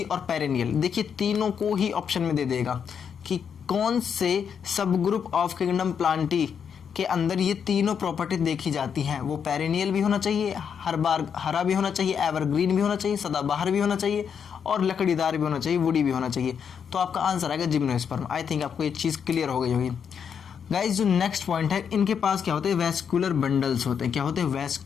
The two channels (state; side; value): quieter; right; 7.3 dB